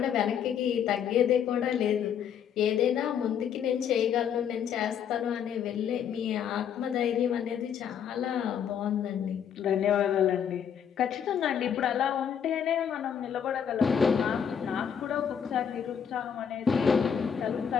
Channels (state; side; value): quieter; right; 8.2 dB